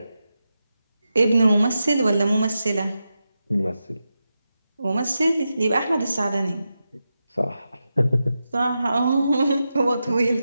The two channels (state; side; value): inverted; both; correlation -0.90